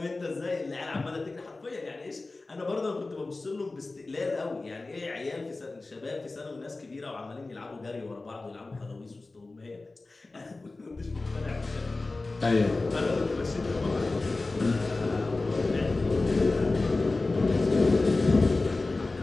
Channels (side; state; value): right; quieter; 3.3 dB